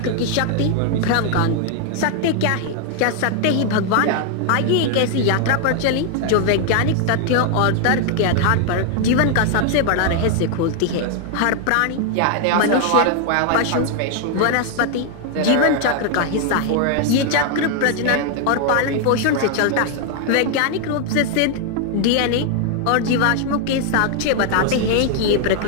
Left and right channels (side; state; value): both; different; correlation 0.00